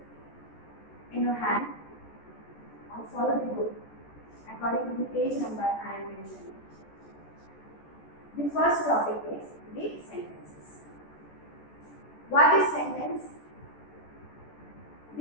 in your hand or follow the book according to the page number I am mentioning. The first topic is the sentences. What is sentence?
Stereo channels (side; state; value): right; late; 14 ms